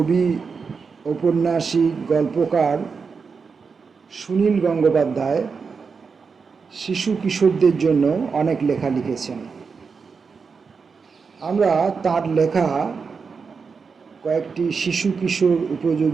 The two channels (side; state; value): left; quieter; 5.3 dB